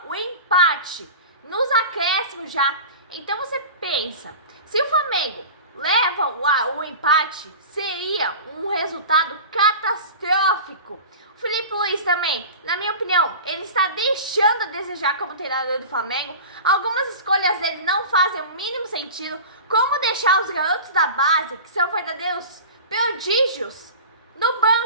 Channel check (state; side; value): inverted; both; correlation -0.35